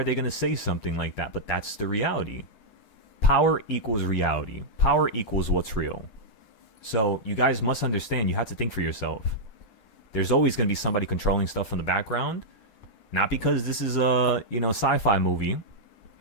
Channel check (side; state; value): right; late; 9.4 ms